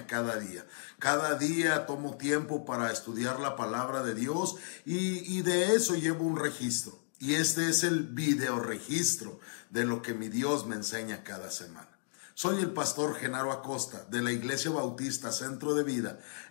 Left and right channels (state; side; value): silent; right; digital silence